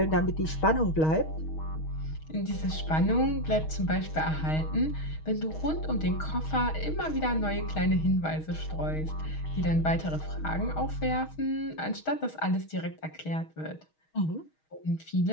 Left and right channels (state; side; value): late; right; 6.4 ms